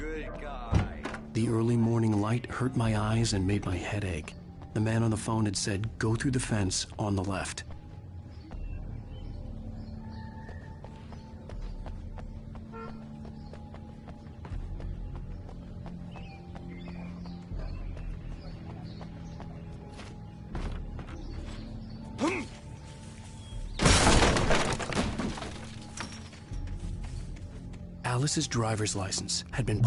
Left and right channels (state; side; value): identical; both; correlation 1.00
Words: good guy. The early morning light hurt my eyes and made my head ache. The man on the phone had said, go through the fence on the left. Alice's driver's license had been